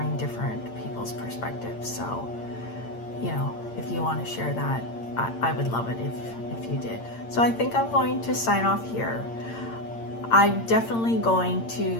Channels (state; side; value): late; right; 8.8 ms